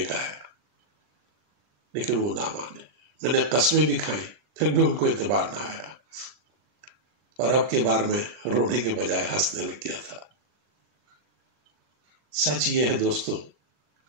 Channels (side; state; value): left; late; 40 ms